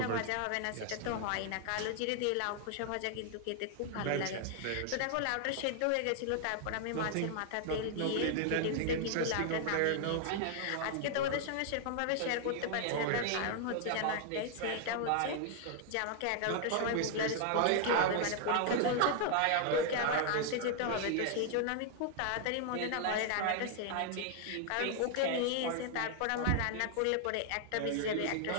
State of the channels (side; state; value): both; different; correlation 0.00